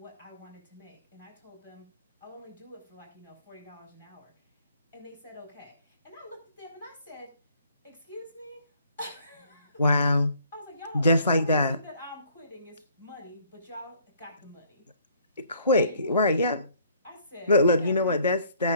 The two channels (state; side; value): inverted; both; correlation -0.61